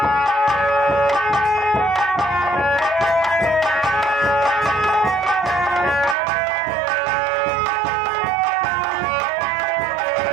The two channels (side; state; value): left; drops out; at 6.2 s